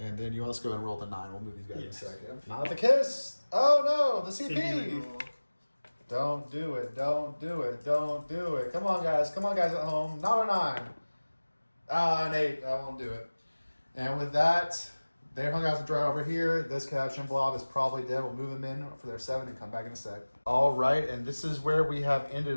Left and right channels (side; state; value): both; inverted; correlation -1.00